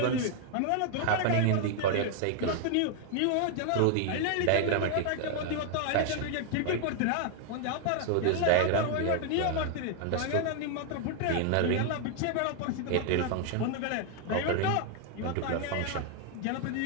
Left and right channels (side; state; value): both; different; correlation 0.00